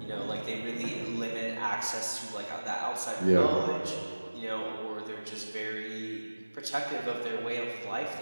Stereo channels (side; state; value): both; inverted; correlation -1.00